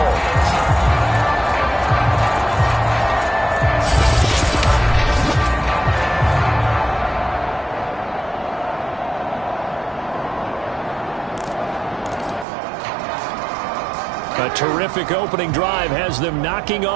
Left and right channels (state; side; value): drops out; left; at 12.5 s